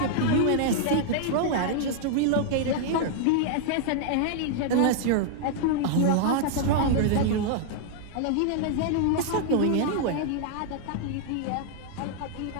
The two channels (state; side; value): different; both; correlation 0.00